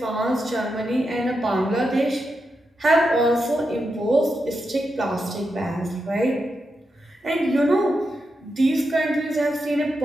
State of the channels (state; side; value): normal; both; correlation 0.86